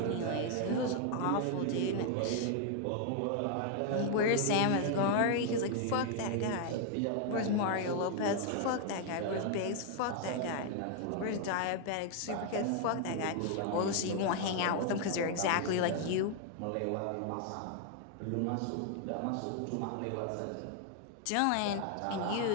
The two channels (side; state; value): both; different; correlation 0.00